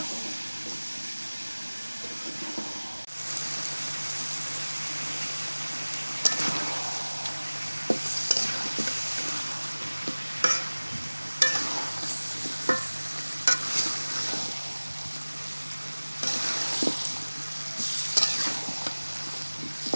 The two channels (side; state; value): both; inverted; correlation -1.00